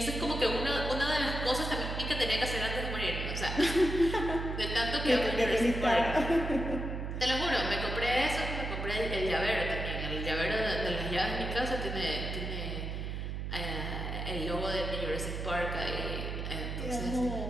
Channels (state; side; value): noise; right; hum, 4 dB below the sound